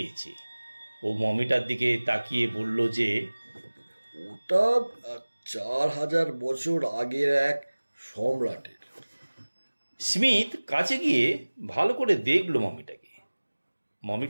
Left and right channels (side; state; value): both; inverted; correlation -1.00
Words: ও মমিটার দিকে তাকিয়ে বলল যে, ওটা 4000 বছর আগের এক সম্রাটের। স্মিথ কাছে গিয়ে ভালো করে দেখল মমিটাকে।